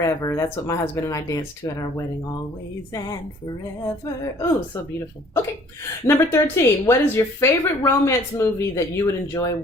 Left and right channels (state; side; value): normal; both; correlation 0.55